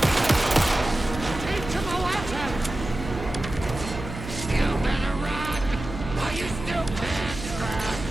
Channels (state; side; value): noise; right; hum, 9 dB below the sound